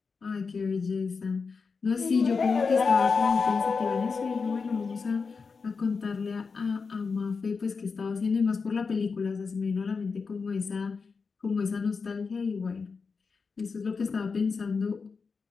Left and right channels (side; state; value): right; quieter; 5.0 dB